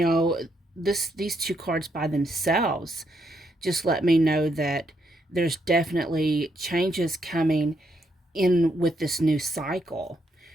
these two cards by themselves just let me know that there's definitely changes coming in with this new cycle.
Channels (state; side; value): normal; both; correlation 0.77